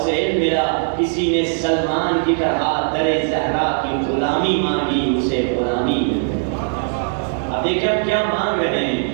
علم ملا, کسی نے سلمان کی طرح در زہرا کی غلامی مانگی اسے غلامی ملی. اب دیکھیں ہم کیا مانگ رہے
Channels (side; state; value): left; silent; digital silence